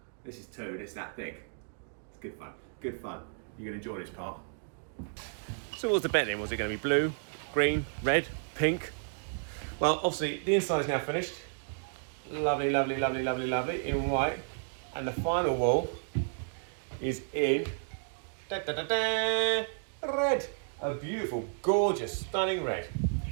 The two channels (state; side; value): silent; left; digital silence